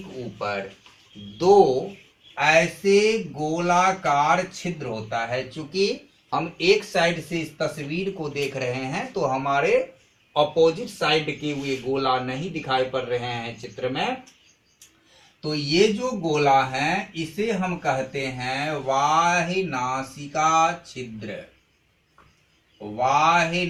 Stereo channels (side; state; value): both; identical; correlation 1.00